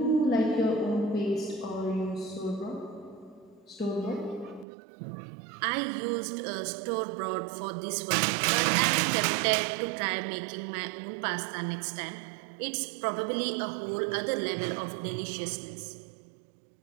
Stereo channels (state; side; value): drops out; left; at 4.7 s